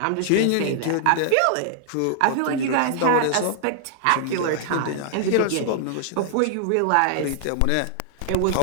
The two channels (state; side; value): different; both; correlation -0.01